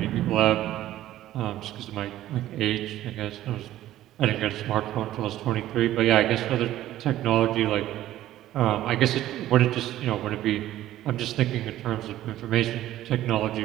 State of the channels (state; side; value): quieter; left; 13.8 dB